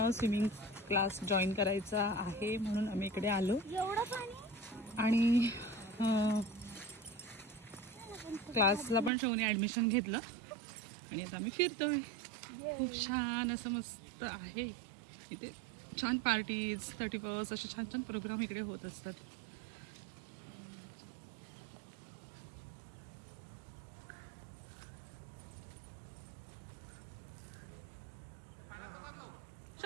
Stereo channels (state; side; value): drops out; left; at 9.1 s